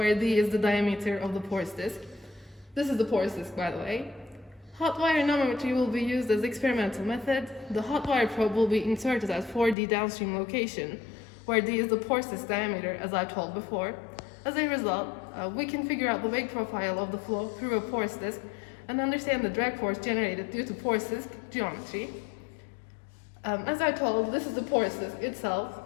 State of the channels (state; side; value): drops out; right; at 9.8 s